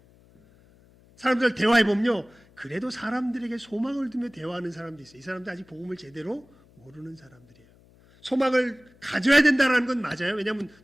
사람들 대화해보면요, 그래도 사람들에게 소망을 두며 대화하는 사람도 있어요. 이 사람들 아직 복음을 제대로 모르는 사람들이에요. 소망을 가져야 된다는 건 맞아요. 왜냐하면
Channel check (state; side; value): noise; left; hum, 29 dB below the sound